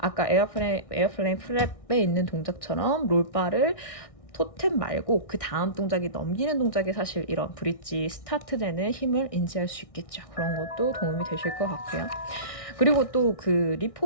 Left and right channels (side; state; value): right; late; 1.6 ms